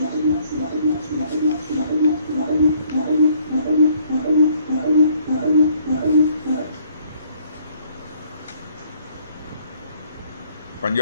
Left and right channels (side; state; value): both; inverted; correlation -0.63